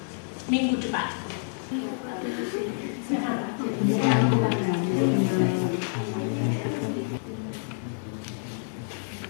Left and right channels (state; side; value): silent; right; digital silence